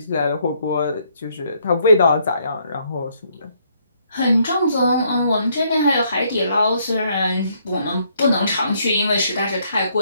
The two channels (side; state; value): both; inverted; correlation -0.70